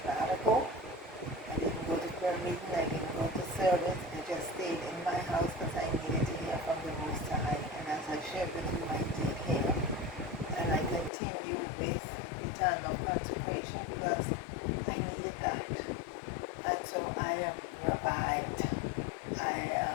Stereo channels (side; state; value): right; drops out; at 11.1 s